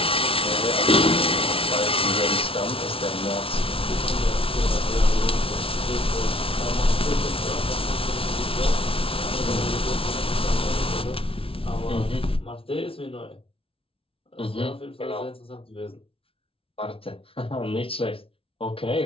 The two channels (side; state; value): right; late; 0.26 ms